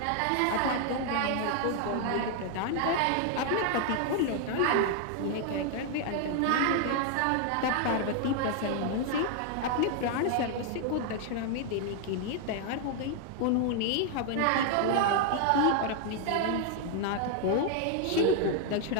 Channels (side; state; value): both; different; correlation 0.00